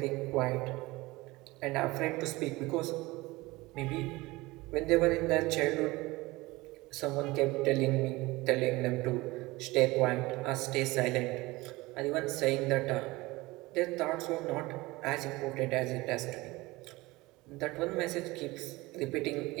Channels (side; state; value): left; quieter; 21.1 dB